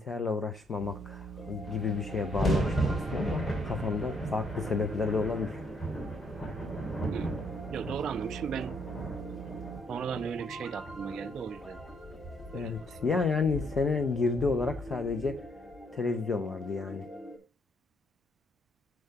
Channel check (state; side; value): normal; both; correlation 0.70